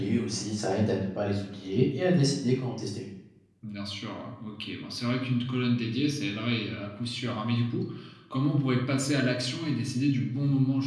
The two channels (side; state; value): both; identical; correlation 1.00